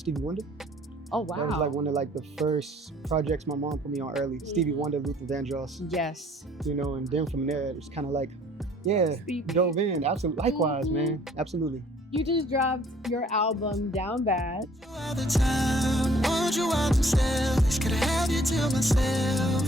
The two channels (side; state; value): both; normal; correlation 0.58